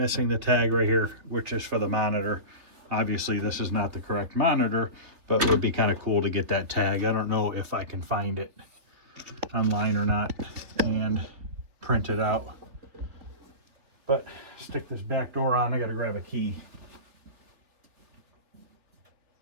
the tag right here, which is for the monitor. Obviously, this is not the correct monitor, but it would be kind of cool to get that tag. I don't know if I can find it online or not and print it out. But stick this back door on. I got to grab a key.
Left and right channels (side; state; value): left; late; 3.6 ms